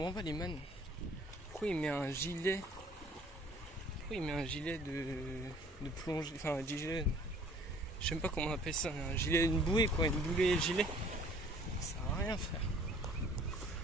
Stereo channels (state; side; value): normal; both; correlation 0.55